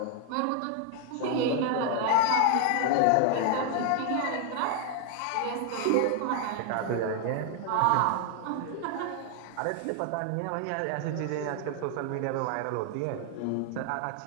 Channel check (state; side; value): different; both; correlation 0.00